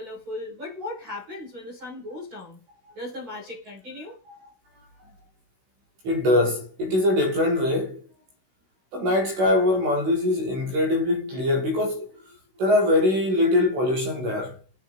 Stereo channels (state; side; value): late; left; 16 ms